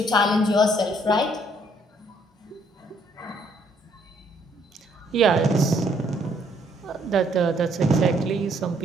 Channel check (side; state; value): both; normal; correlation 0.67